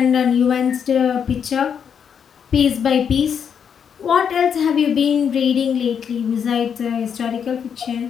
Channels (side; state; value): right; quieter; 7.5 dB